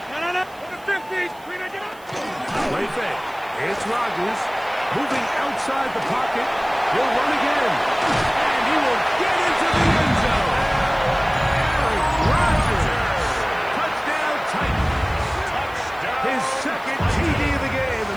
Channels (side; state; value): right; noise; hiss, 26 dB below the sound